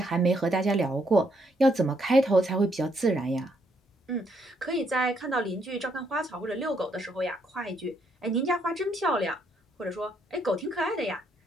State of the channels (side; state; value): both; normal; correlation 0.73